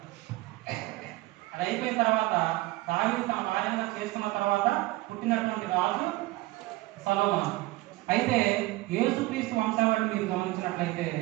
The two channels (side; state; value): left; quieter; 19.6 dB